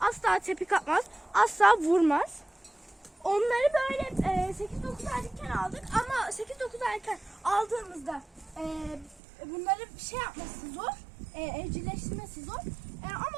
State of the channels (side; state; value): left; drops out; at 9.2 s